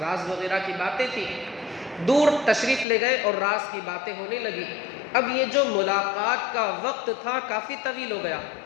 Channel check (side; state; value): right; drops out; at 2.9 s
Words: وغیرہ کی باتیں تھی، دور تشریف لے گئے اور راز کی باتیں ہونے لگی۔ اب یہ جو ملاقات کا وقت تھا کافی طویل ہو گیا،